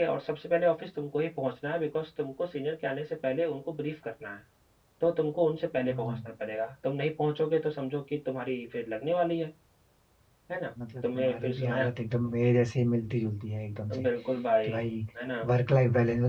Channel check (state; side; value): identical; both; correlation 1.00